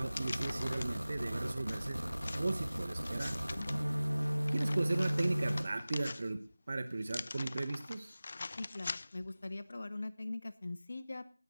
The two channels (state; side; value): inverted; both; correlation -0.98